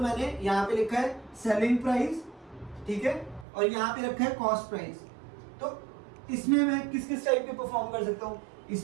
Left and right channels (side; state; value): left; drops out; at 3.5 s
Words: मैंने यहाँ पे लिखा है सेलिंग प्राइस, ठीक है, और यहाँ पे रखा है कॉस्ट प्राइस, तो इसमें मैं किस किस टाइप के परफॉर्म कर सकता हूँ, इस